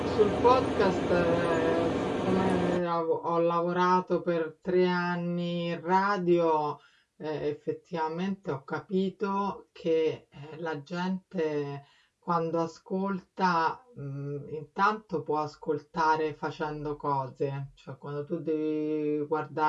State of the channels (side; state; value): both; identical; correlation 1.00